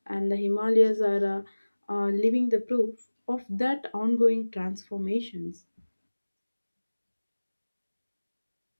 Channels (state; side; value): inverted; both; correlation -1.00